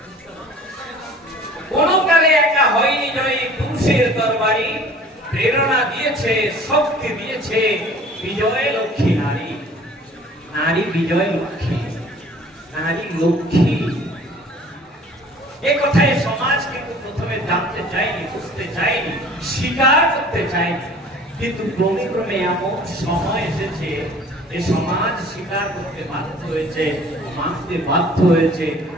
কোন কালে একা হয়নি জয়ী পুরুষের দরবারি, প্রেরণা দিয়েছে শক্তি দিয়েছে বিজয় লক্ষ্মী নারী। নারী বিজয় লক্ষ্মী, নারী লক্ষ্মী। এ কথায় সমাজ কিন্তু প্রথমে জানতে চায়নি, বুঝতে চায়নি, স্বীকার করতে চায়নি। কিন্তু ক্রমে ক্রমে এমন সময় এসেছে যে সমাজ স্বীকার করতে বাধ্য হয়েছে, মানতে বাধ্য হয়েছে।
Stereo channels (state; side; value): normal; both; correlation 0.49